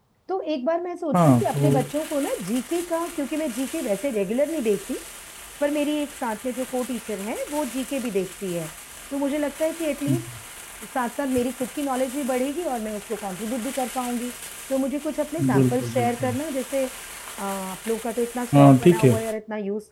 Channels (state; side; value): identical; both; correlation 1.00